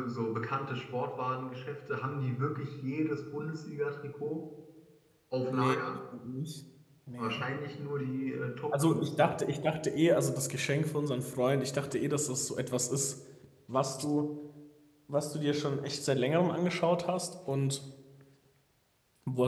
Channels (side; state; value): both; identical; correlation 1.00